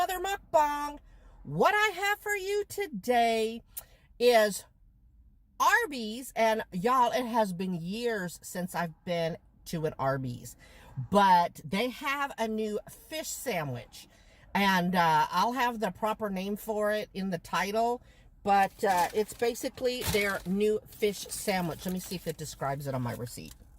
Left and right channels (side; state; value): both; identical; correlation 1.00